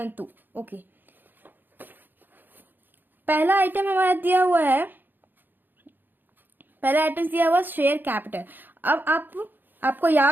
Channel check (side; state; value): left; late; 0.091 ms